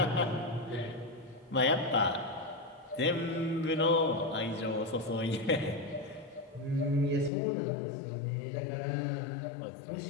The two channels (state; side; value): drops out; right; at 7.3 s